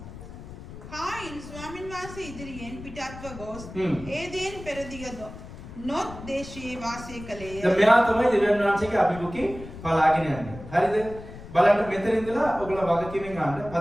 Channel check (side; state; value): left; noise; rumble, 14 dB below the sound